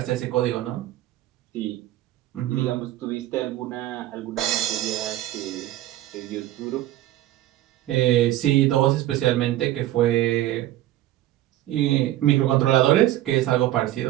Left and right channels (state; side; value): quieter; left; 14.6 dB